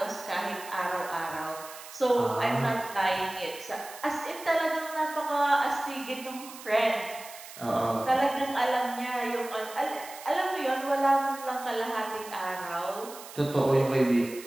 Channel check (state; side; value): noise; right; hiss, 15 dB below the sound